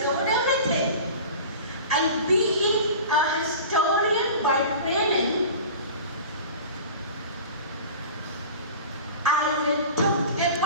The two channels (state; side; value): inverted; both; correlation -0.37